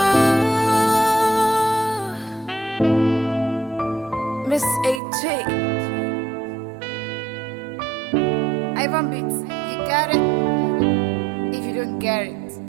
Miss AJ. Ivan Beats, you got it. If you don't get it,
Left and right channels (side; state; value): left; drops out; at 5.0 s